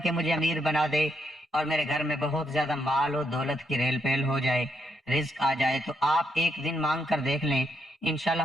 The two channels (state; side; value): normal; both; correlation 0.78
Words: کے مجھے امیر بنا دے اور میرے گھر میں بہت زیادہ مال و دولت کی ریل پیل ہو جائے، رزق آ جائے، تو آپ ایک دن مانگ کر دیکھ لیں، انشاءاللہ